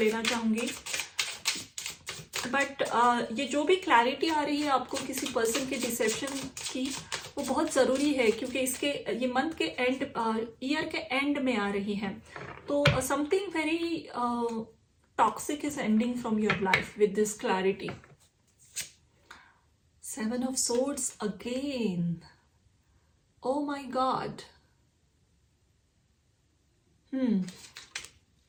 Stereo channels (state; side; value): identical; both; correlation 1.00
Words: चाहूंगी, बट ये जो भी क्लैरिटी आ रही है आपको किसी पर्सन के डिसेप्शन की, वो बहुत ज़रूरी है, क्योंकि ये मंथ के एंड, ईयर के एंड में आ रही है. तो something very toxic is ending from your life with this clarity. 7 of Swords again. Oh my God.